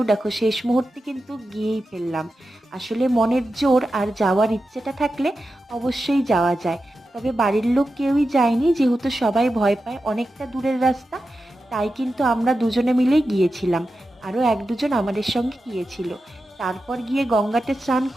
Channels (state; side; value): normal; both; correlation 0.91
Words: দেখো শেষ মুহূর্তে কিন্তু গিয়েই ফেললাম। আসলে মনের জোর আর যাওয়ার ইচ্ছেটা থাকলে অবশ্যই যাওয়া যায়। তবে বাড়ির লোক কেউই যায়নি, যেহেতু সবাই ভয় পায়, অনেকটা দূরের রাস্তা। তাই কিন্তু আমরা দুজনে মিলেই গিয়েছিলাম, আরও এক দুজন আমাদের সঙ্গে গিয়েছিল। তারপর গিয়ে গঙ্গাতে স্নান